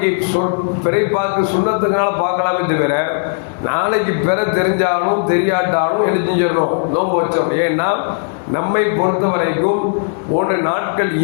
பிறை பார்க்க சுண்ணத்துக்கான பார்க்கலாமே தவிர நாளைக்கு பிற தெரிஞ்சாலும் தெரியாட்டாலும் என்ன செஞ்சிடணும், நோன்பு வச்சோம். ஏன்னா நம்மை பொறுத்த வரைக்கும் ஒன்று நாட்கள்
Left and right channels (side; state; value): right; silent; 69 dB below the other